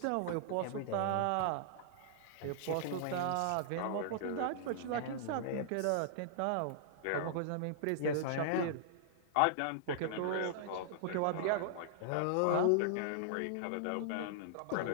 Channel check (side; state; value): both; different; correlation -0.01